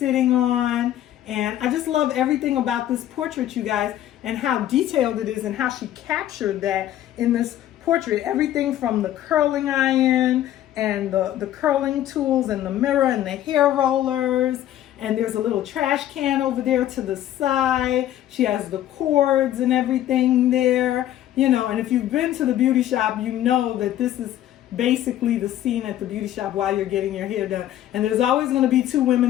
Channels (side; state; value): right; quieter; 12.5 dB